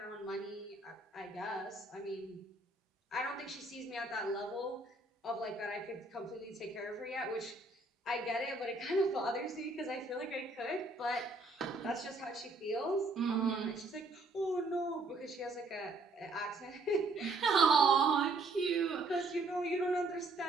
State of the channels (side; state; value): left; quieter; 3.1 dB